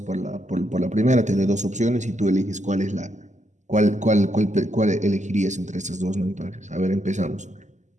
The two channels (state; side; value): late; left; 0.34 ms